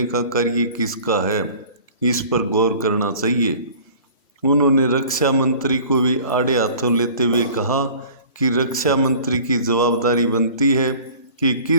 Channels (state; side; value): inverted; both; correlation -0.46